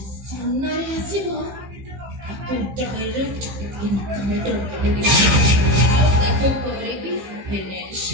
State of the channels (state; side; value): late; left; 15 ms